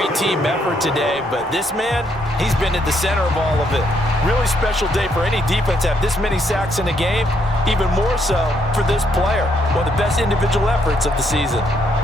team effort today, but this man, he's been at the center of all of it. Really special day for any defense to have this many sacks in a game, even more so for this player. One of the best individual efforts of the season.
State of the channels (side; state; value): both; normal; correlation 0.73